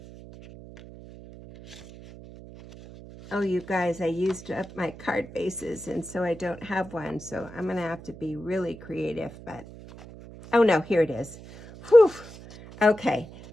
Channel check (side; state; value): right; noise; hum, 17 dB below the sound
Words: Oh, you guys, I used up my card bases, and so I don't have one. So I'm going to have to be really creative, but... Oh, no, here it is. Whew. Okay,